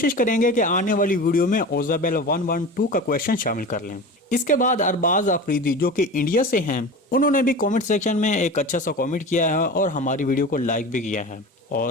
वाली वीडियो में ओजाबेल 112 का क्वेश्चन शामिल कर लें। इसके बाद अरबाज अफरीदी, जो कि इंडिया से हैं, उन्होंने भी कमेंट सेक्शन में एक अच्छा सा कमेंट किया है और हमारी वीडियो को लाइक भी किया है।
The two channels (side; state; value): both; normal; correlation 0.32